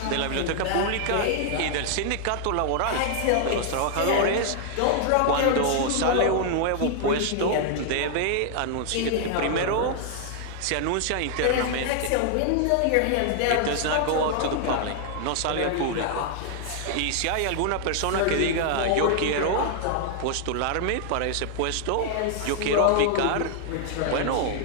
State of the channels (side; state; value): both; different; correlation 0.00